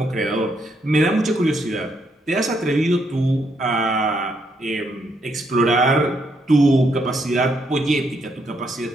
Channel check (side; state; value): both; normal; correlation 0.75